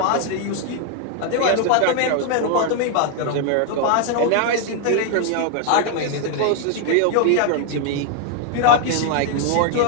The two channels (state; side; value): different; both; correlation 0.00